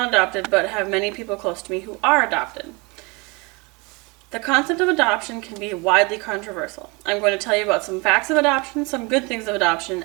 adopted, but have many people close to me who are adopted. The concept of adoption can be widely controversial. I'm going to tell you about some facts of adoption, some good things of adoption,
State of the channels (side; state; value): left; quieter; 28.0 dB